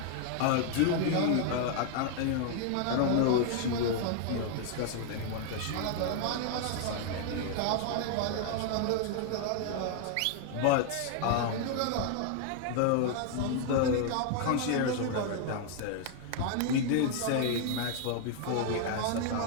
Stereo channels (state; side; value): different; both; correlation 0.00